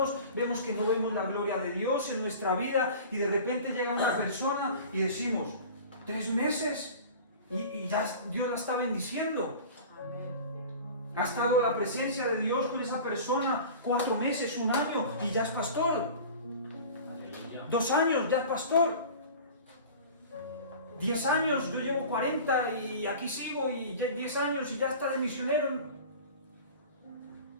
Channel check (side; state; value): both; inverted; correlation -0.39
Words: vemos que no vemos la gloria de Dios en nuestra vida, y de repente llega una persona y decimos, 3 meses y ya Dios la está bendiciendo. Ha estado la presencia de Dios con esa persona 4 meses, 1 año y ya es pastor. Aleluya. 2 años, ya es pastor. 10 años, yo llevo 40 y aquí sigo, y 10 años y ya está de misionero.